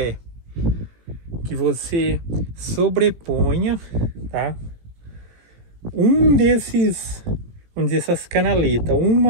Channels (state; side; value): late; left; 18 ms